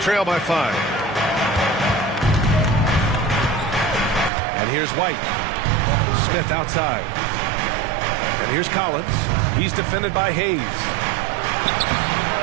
by 5. And here's White. Smith outside. And here's Collins. He's defended by Hayes.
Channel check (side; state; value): left; drops out; at 4.3 s